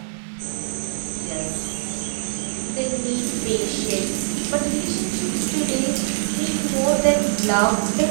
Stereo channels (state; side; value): silent; left; digital silence